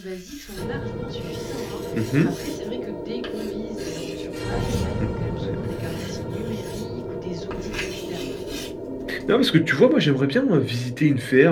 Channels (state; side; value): identical; both; correlation 1.00